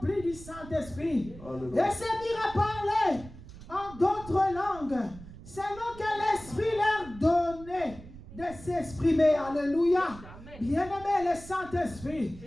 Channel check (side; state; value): right; noise; rumble, 16 dB below the sound